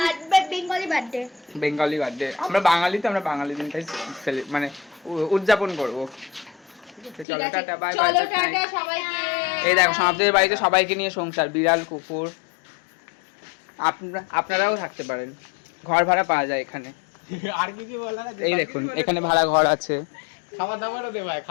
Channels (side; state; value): right; drops out; at 7.2 s